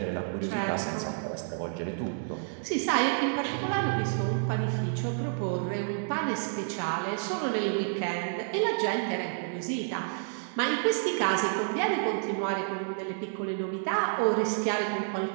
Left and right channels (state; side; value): silent; left; digital silence